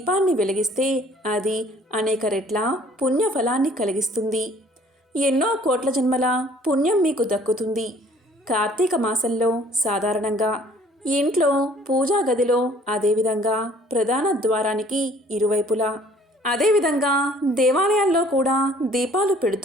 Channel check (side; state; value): both; normal; correlation 0.56